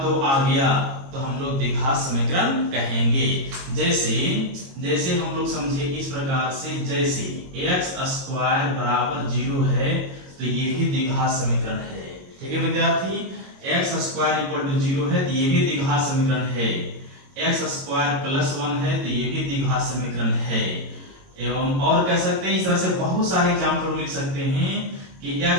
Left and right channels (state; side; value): late; left; 22 ms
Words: 2 आ गया तो हम लोग द्विघात समीकरण कहेंगे। जैसे हम लोग समझिए इस प्रकार से, जैसे x स्क्वायर बराबर 0 है तो ये भी द्विघात समीकरण है। ठीक है विद्यार्थी, x स्क्वायर इक्वल टू 0 है तो ये भी द्विघात समीकरण है। x स्क्वायर प्लस 1 है तो ये भी द्विघात समीकरण है। एवं और कह सकते हैं, इस तरह से बहुत सारे एग्जाम्पल लिख सकते हैं कि